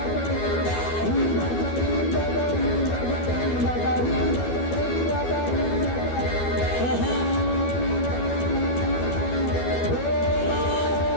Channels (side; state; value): right; late; 12 ms